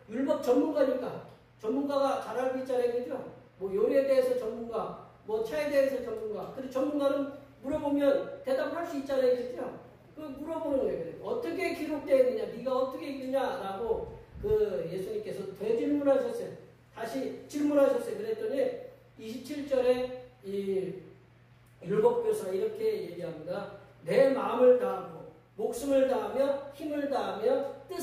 율법 전문가니까 전문가가 잘 알고 있잖아요. 그죠? 뭐 요리에 대해서 전문가, 뭐 차에 대해서 전문가. 근데 전문가는 물어보면 대답을 할 수 있잖아요. 그죠? 그 물어보는 거예요. 어떻게 기록되어 있느냐? 네가 어떻게 읽느냐라고 예수님께서 되질문하셨어요. 다시 질문하셨어요. 그랬더니 27절에 이 율법교사 이렇게 얘기합니다. 내 마음을 다하고 목숨을 다하며 힘을 다하며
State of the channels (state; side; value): identical; both; correlation 1.00